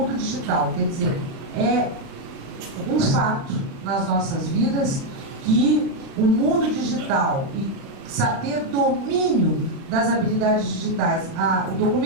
digital, quer dizer, é um fato nas nossas vidas que o mundo digital e ter domínio das habilidades digitais. O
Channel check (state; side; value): late; left; 35 ms